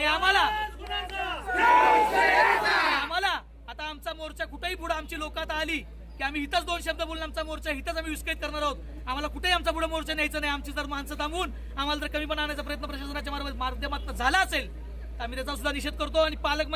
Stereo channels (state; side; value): identical; both; correlation 1.00